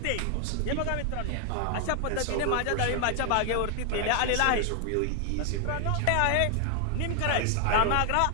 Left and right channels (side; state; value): both; different; correlation 0.00